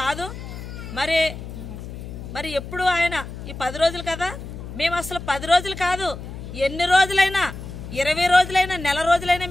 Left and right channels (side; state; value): left; noise; hum, 10 dB below the sound